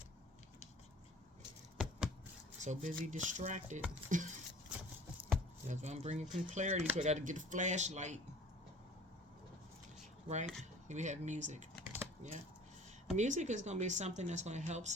So busy distracted. That's why I'm bringing some clarity. So I got to get a flashlight. Right? Here we have music. Yeah. Music is going to be something that's going to help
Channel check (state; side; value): normal; both; correlation 0.47